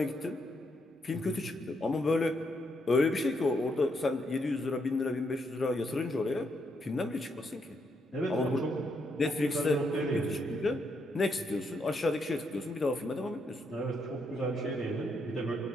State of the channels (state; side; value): normal; both; correlation 0.78